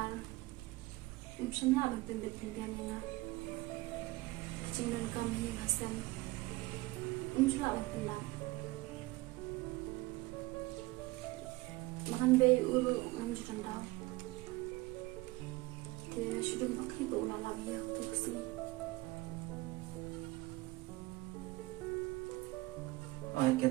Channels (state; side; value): quieter; left; 20.9 dB